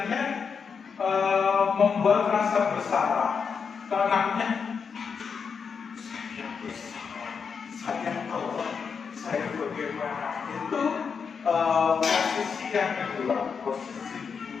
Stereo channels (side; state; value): right; quieter; 6.0 dB